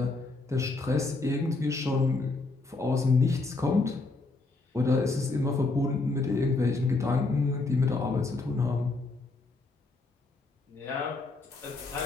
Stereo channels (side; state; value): right; quieter; 3.5 dB